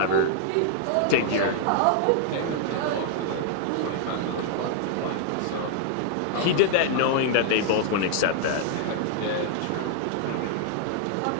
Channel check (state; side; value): different; both; correlation -0.01